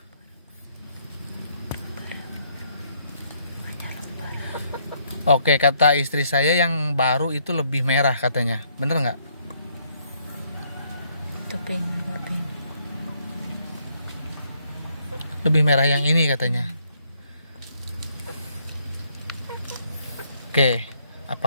Oke, kata istri saya yang baru itu lebih merah katanya. Bener nggak? Itu pink, agak pink. Lebih merah yang ini katanya. Oke,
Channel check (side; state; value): both; inverted; correlation -0.70